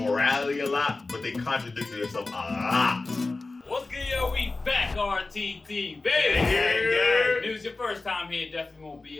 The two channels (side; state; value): right; quieter; 3.4 dB